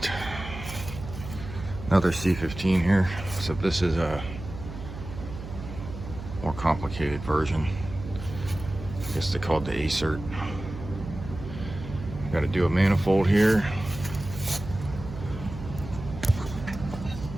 another C15 here, except this is a more complicated version. I guess they call it the acert. Got to do a manifold here.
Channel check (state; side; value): noise; right; hum, 10 dB below the sound